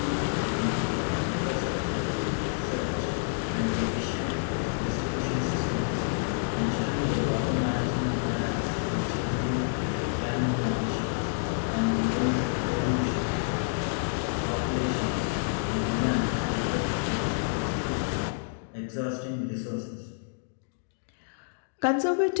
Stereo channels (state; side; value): silent; right; digital silence